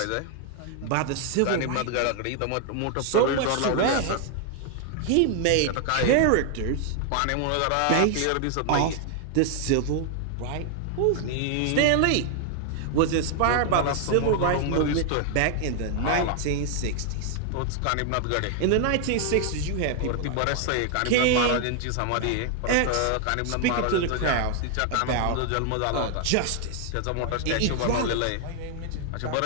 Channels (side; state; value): both; different; correlation 0.00